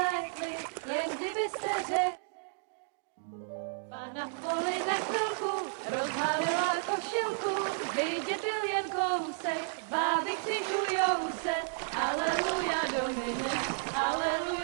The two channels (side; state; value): left; silent; digital silence